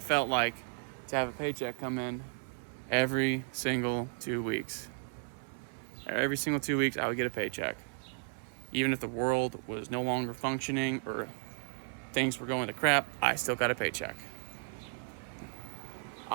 felt like to have a paycheck come in every single 2 weeks. Every single 2 weeks, I would get a paycheck. Even if the world was no longer functioning or things were going to crap, I still got a paycheck.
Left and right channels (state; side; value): silent; left; 55 dB below the other